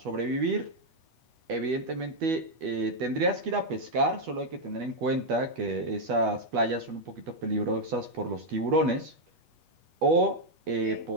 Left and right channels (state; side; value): late; left; 8.2 ms